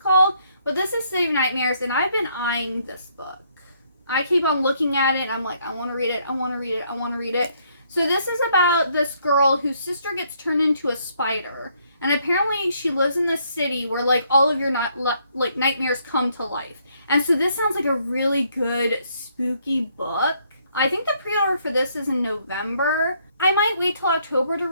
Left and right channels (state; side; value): inverted; both; correlation -0.70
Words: called. But this is City of Nightmares, and I've been eyeing this book. I keep on looking at it, and I'm like, I want to read it, I want to read it, I want to read it. So this is about this girl whose sister gets turned into a spider. And apparently she lives in this city where, like, all of your nightmares come to life. And so this sounds like a really good, spooky book. I think the pre-order for this is in November. I might wait till October to